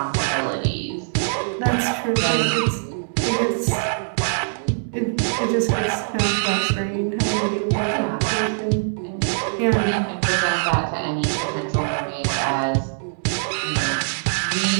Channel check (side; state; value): left; silent; 64 dB below the other